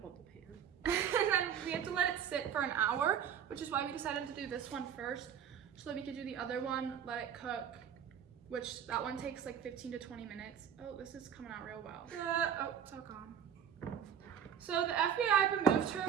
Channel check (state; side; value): quieter; left; 8.5 dB